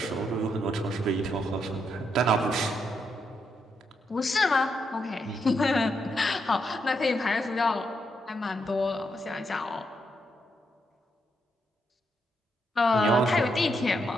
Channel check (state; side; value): normal; both; correlation 0.80